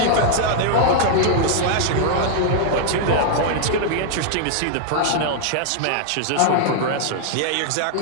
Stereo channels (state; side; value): different; both; correlation -0.01